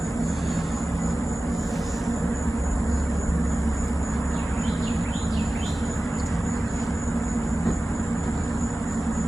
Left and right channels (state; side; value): normal; both; correlation 0.96